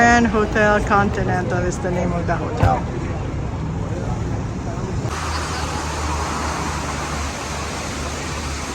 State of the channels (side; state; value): both; identical; correlation 1.00